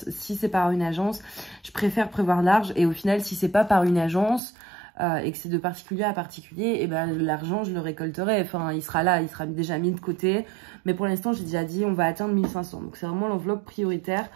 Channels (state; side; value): drops out; left; at 4.4 s